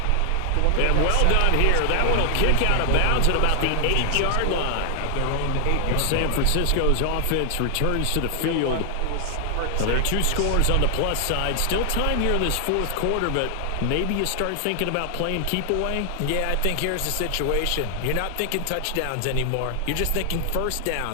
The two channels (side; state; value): both; different; correlation 0.00